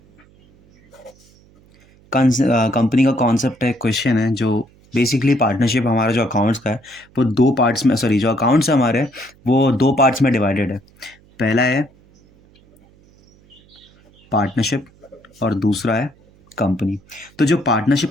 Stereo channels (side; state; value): right; noise; hum, 29 dB below the sound